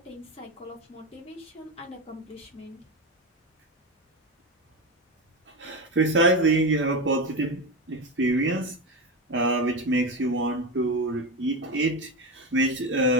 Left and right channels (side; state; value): both; normal; correlation 0.18